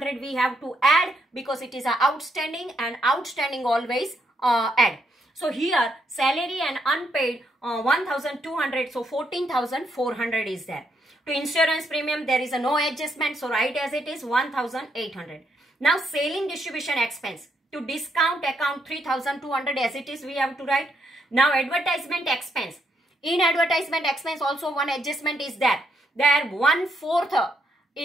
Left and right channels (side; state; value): both; normal; correlation 0.76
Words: we have to add because it is a outstanding, and outstanding always add. So here salary and unpaid 1,200, so 14,400 is there. To insurance premium there is a no adjustment, so write as it is 1,800. Now selling distribution expense. To discount account 3,200 as it is we have to write. Now advertisement expense. In advertisement expense also one adjustment is there. There 1/4